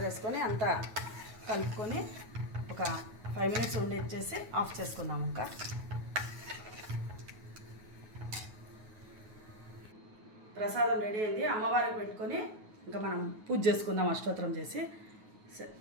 వేసుకొని అంతా కలుపుకొని ఒక 5 మినిట్స్ ఉండేసి ఆఫ్ చేసుకుందాము. ఇంకా ప్రసాదం రెడీ అయింది. అమ్మవారికి పెట్టుకొని ఇంకా మనం పూజ చేసుకుందాం అష్టోత్తరం చేసి.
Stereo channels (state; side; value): late; left; 9.4 ms